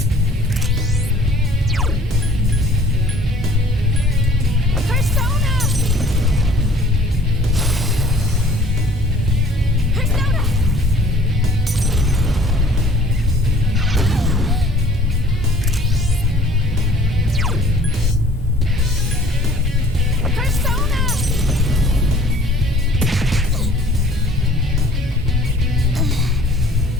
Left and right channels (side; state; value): left; noise; rumble, 14 dB below the sound